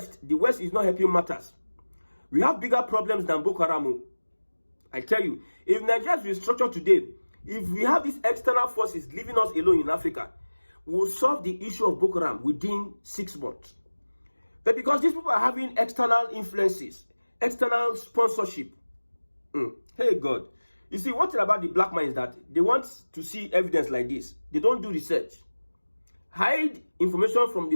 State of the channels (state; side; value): inverted; both; correlation -1.00